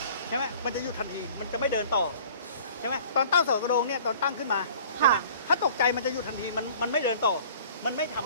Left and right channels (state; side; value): inverted; both; correlation -0.49